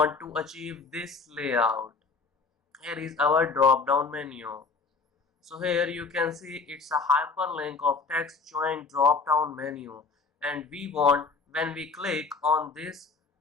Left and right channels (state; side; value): quieter; right; 4.4 dB